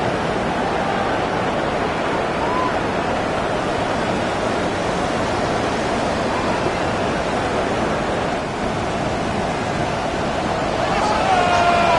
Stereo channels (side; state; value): both; identical; correlation 1.00